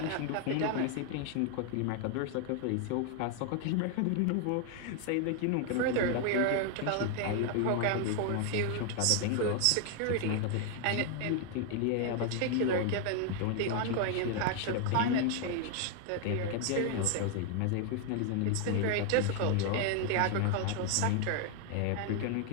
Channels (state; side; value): different; both; correlation 0.00